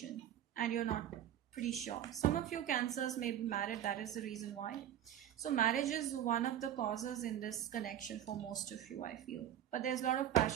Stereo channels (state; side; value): quieter; left; 10.9 dB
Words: and you're not pretty sure. Some of you Cancers may be married, that is the reason why. So marriage is one of the causes in this connection for most of you, I feel. But there's a lot of